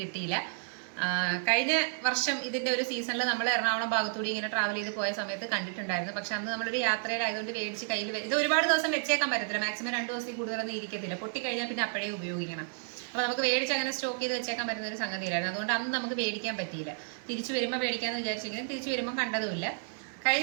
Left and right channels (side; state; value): left; silent; digital silence